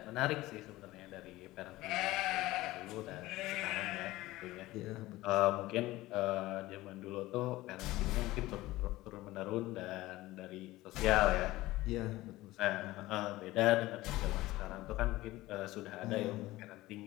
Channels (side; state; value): right; quieter; 17.9 dB